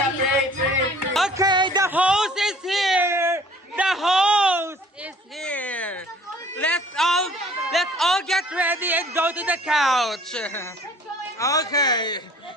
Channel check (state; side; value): normal; both; correlation 0.52